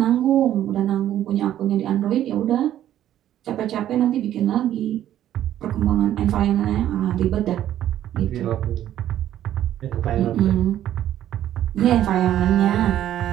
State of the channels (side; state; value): left; quieter; 11.9 dB